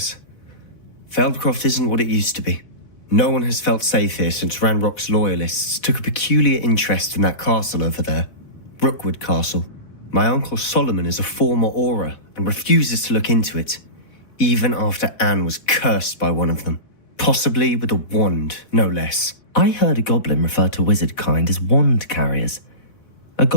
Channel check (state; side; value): late; right; 4.1 ms